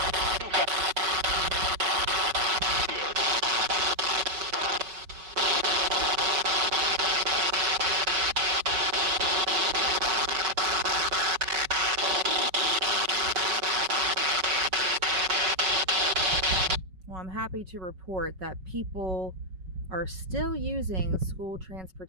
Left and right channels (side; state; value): left; late; 5.3 ms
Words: Well, I'm happy to report that people are still using school